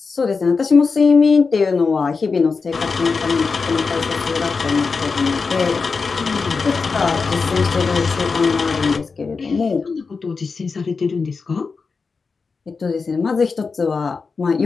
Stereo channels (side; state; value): right; quieter; 4.7 dB